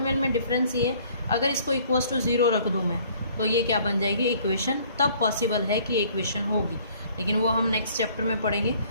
में डिफरेंस ये, अगर इसको इक्वल्स टू 0 रख दूँ मैं तो ये क्या बन जाएगी इक्वेशन, तब पॉसिबल है कि इक्वेशन होगी, लेकिन वो हम नेक्स्ट चैप्टर में पढ़ेंगे।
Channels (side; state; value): both; inverted; correlation -0.57